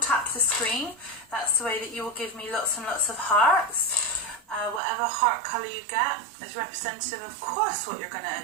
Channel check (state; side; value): drops out; left; at 4.8 s